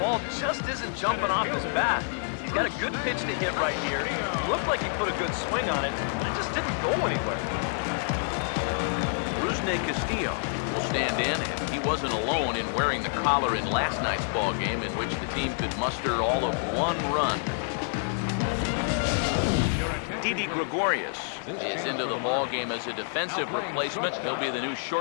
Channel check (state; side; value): silent; right; 59 dB below the other